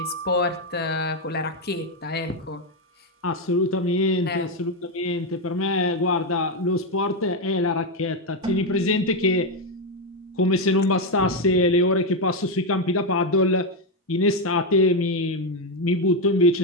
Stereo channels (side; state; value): both; normal; correlation 0.05